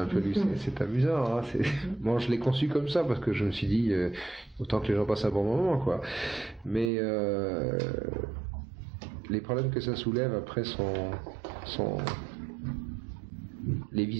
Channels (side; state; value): left; drops out; at 6.9 s